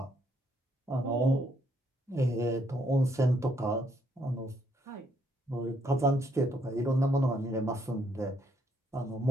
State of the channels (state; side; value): normal; both; correlation 0.71